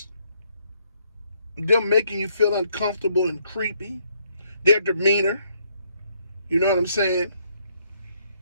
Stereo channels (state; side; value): inverted; both; correlation -0.71